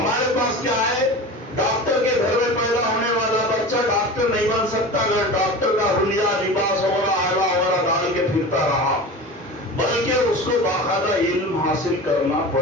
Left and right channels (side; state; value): both; normal; correlation 0.32